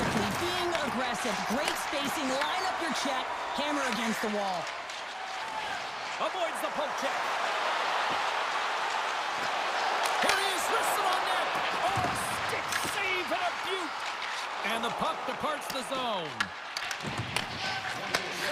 being aggressive, great spacing, line up your check, hammer against the wall. Avoids the poke check. Here he is, wristed on net. Oh, stick save and a beaut. And the puck departs the zone.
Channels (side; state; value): both; identical; correlation 1.00